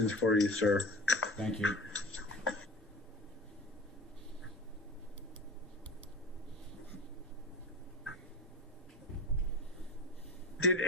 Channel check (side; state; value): both; normal; correlation 0.34